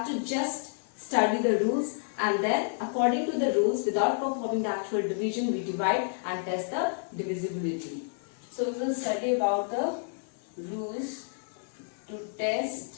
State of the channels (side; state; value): right; silent; digital silence